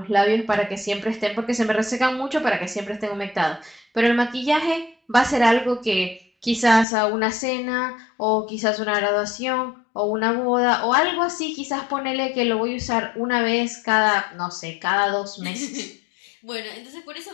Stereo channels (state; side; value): drops out; right; at 6.9 s